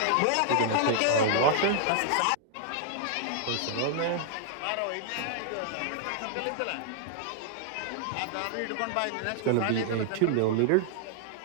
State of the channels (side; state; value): both; different; correlation 0.00